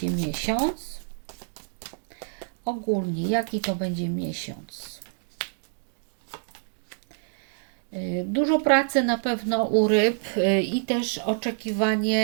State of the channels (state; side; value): silent; left; digital silence